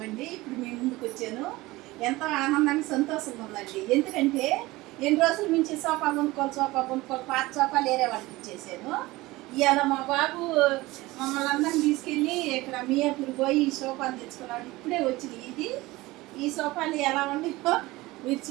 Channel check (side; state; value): left; quieter; 19.9 dB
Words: అండి. ఇప్పుడు మేము ముందుకు వచ్చాను. ఎంతో ఆనందానికి సంతోషంగా ఉందండి. ఎందుకంటే ఎన్ని రోజుల నుంచి సోఫా కొనుక్కోవాలి పాత సోఫాలు వేరే వాళ్ళకి ఇచ్చేసాను. ఇవాళ మా బాబు మమ్మల్ని అందరిని తీసుకెళ్ళి ఇక్కడ మియాపూర్ పోయి ఈ సోఫాలు తెచ్చుకున్నాడు. ఇప్పుడే వచ్చింది. ఈ సోఫాలు ఎలా ఉన్నాయో మీరు